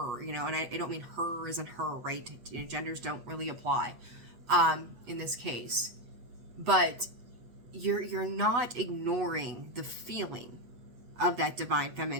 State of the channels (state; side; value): late; left; 8.1 ms